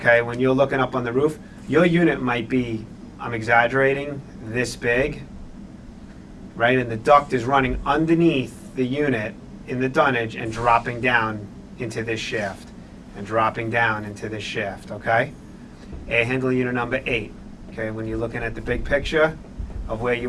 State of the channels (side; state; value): both; identical; correlation 1.00